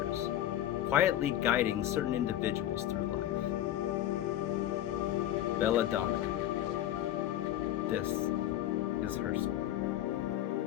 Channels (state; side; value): quieter; right; 12.5 dB